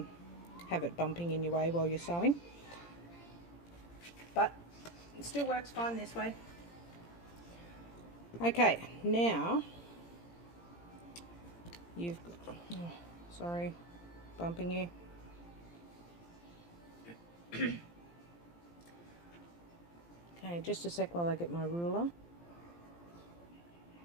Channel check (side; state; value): right; late; 17 ms